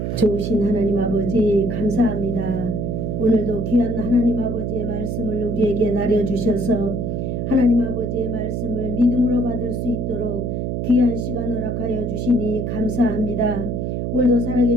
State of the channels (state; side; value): noise; right; hum, 2 dB below the sound